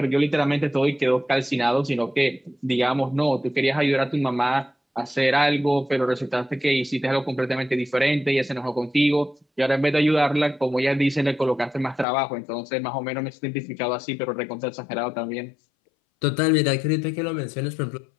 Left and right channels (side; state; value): right; drops out; at 12.1 s